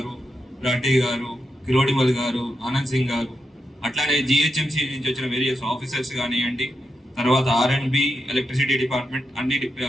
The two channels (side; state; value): both; normal; correlation 0.86